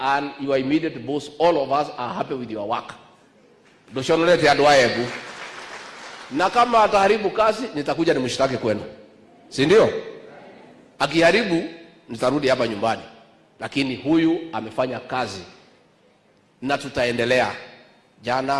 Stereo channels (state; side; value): identical; both; correlation 1.00